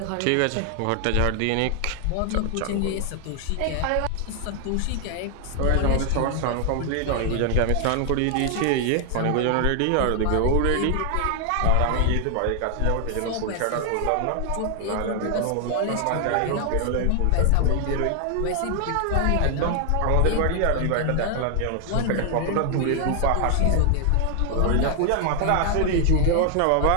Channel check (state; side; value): different; both; correlation 0.00